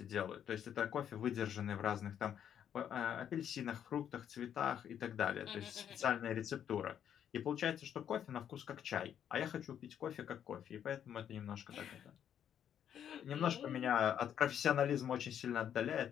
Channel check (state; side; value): quieter; right; 9.3 dB